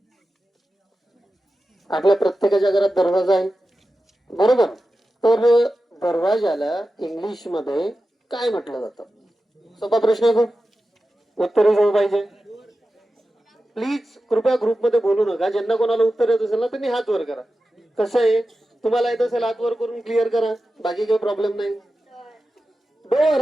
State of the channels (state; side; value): normal; both; correlation 0.93